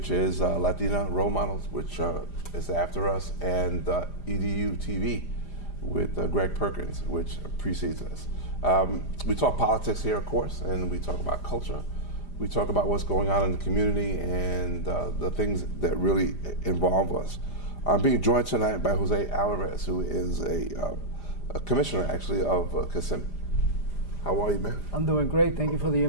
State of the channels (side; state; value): right; late; 5.0 ms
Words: is Latina Role Models, which is after us, and EDU TV with Greg Perkins, which precedes us. We talk politics here, of course, and we talk about culture. We talk about what's going on in the community and the things that really involve us. I'm being joined tonight by Jose Alvarez, who is a commissioner, actually, of Kissimmee. How are you, man? I'm doing great. Thank you for the